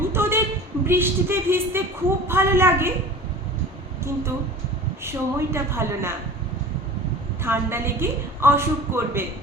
তোদের বৃষ্টিতে ভিজতে খুব ভালো লাগে, কিন্তু সময়টা ভালো না, ঠান্ডা লেগে অসুখ করবে।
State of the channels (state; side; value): normal; both; correlation 0.39